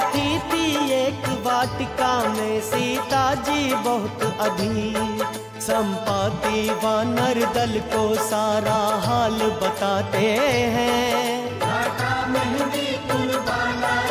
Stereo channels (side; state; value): both; identical; correlation 1.00